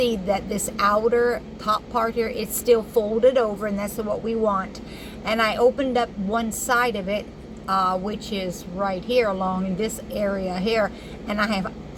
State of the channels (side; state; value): both; identical; correlation 1.00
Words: that this outer top part here, it's still folded over, and that's what we want. And I opened up one side of it, which is right here along in this area here, and I have